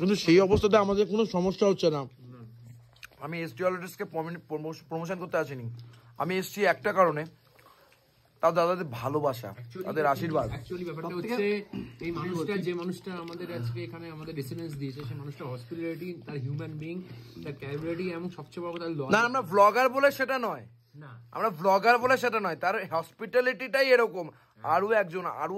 সেই অবস্থাতে আমাদের কোনো সমস্যা হচ্ছে না। আমি এসডি অলরেডিসকে প্রমোশন করতে আসিনি, আমি এসছি একটা কারণে, তাও দাদাদের ভালোবাসা, তাদের আশীর্বাদ। অ্যাকচুয়ালি ব্যাপারটা হচ্ছে, এই মানুষটা, যে মানুষটা আমাদের আজকে এখানে আমাদের রেসিডেন্স দিয়েছে, সেই মানুষটা হসপিটালিটি, তার হিউম্যান বিং, তার ক্যাপাবিলিটি, এবং সবচেয়ে বড় কথা না, আমরা ব্লগার বলে সেটা নয়, তার হসপিটালিটিটাই এরকম। আরো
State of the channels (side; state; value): both; identical; correlation 1.00